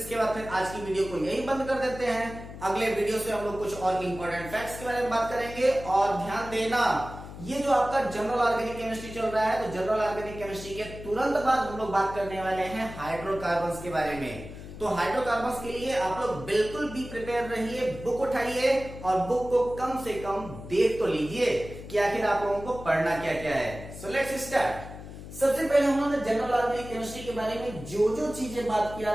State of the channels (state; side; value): noise; left; hum, 13 dB below the sound